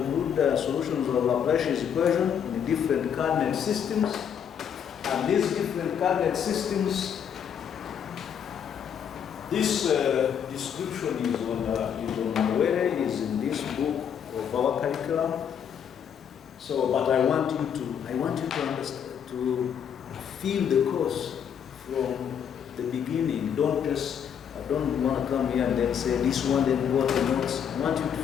solutions of Laplace's equation in different coordinate systems. And these different coordinate systems, this description is on where it is in this book of our curriculum. So, but I want you to understand, to feel the course from the beginning. I don't want to come here and then say this one, then go to the notes. I want you to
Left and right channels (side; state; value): right; quieter; 8.2 dB